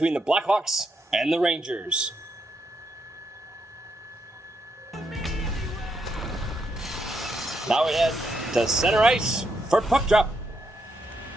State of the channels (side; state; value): both; normal; correlation 0.79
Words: the Blackhawks and the Rangers. Now we head to center ice for puck drop.